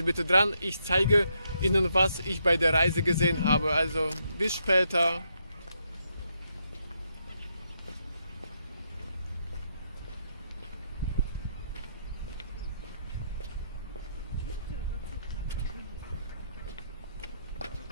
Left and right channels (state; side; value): inverted; both; correlation -0.78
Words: bitte dran, ich zeige Ihnen, was ich bei der Reise gesehen habe. Also bis später.